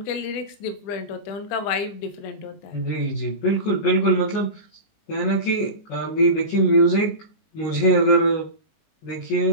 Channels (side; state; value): right; late; 20 ms